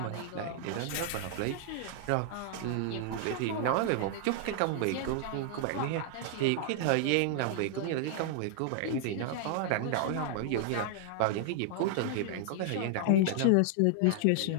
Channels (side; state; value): both; different; correlation 0.00